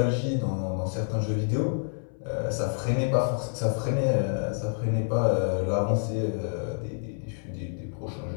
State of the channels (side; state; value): right; silent; 59 dB below the other